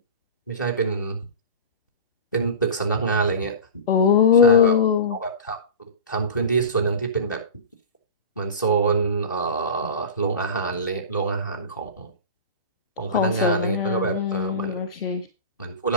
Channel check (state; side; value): inverted; both; correlation -0.30